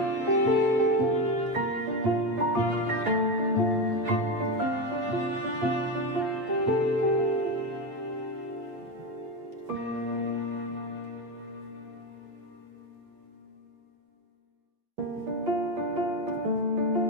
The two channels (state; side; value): late; left; 8.2 ms